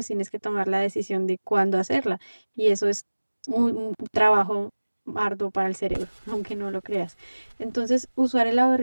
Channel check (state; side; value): inverted; both; correlation -1.00